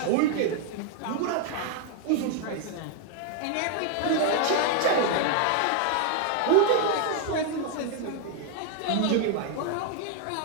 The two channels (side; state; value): both; different; correlation 0.00